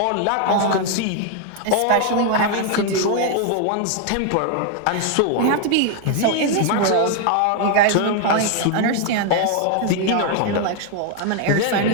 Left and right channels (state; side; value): different; both; correlation 0.00